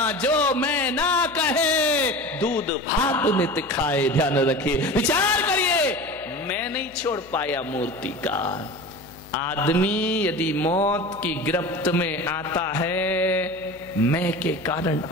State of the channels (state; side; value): noise; left; hum, 25 dB below the sound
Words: जो मैं ना कहे दूध भात नित खाए। ध्यान रखिए, विचार करिए, मैं नहीं छोड़ पाया मूर्तिकार। आदमी यदि मौत की गिरफ्त में आता है, मैं के कारण